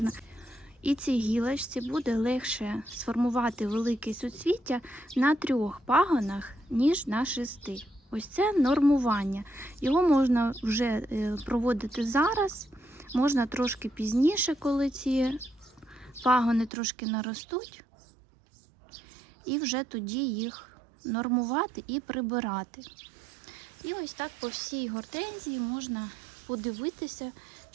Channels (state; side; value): drops out; left; at 16.7 s